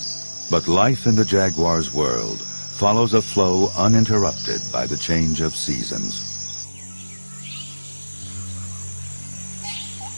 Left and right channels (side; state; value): both; inverted; correlation -1.00